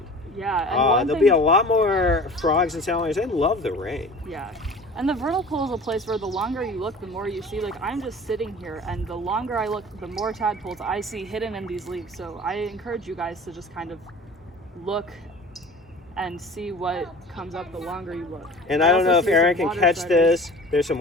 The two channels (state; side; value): normal; both; correlation 0.41